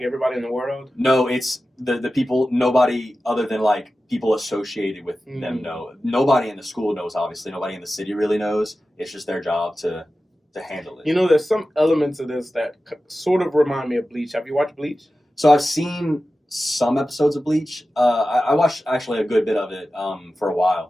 everybody in the world? No, it's the people. Nobody other than like people associated with them know. Nobody in the school knows. Obviously, nobody in the city really knows. It's just their job to handle it. There's some elements of this that sort of remind me of Bleach. Have you watched Bleach? So I've seen some episodes of Bleach. I watched actually a good bit of it for a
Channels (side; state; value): both; normal; correlation 0.94